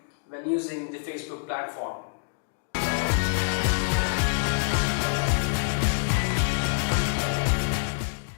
when using the Facebook platform.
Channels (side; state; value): right; silent; digital silence